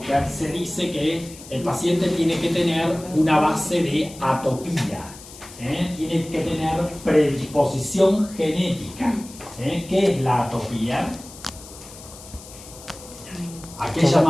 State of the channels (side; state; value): left; noise; hiss, 17 dB below the sound